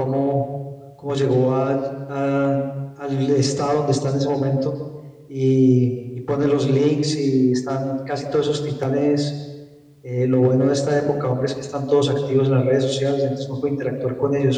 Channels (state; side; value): identical; both; correlation 1.00